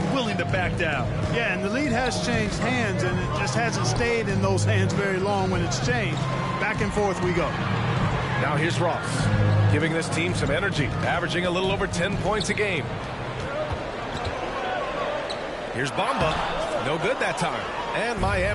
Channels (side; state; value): both; identical; correlation 1.00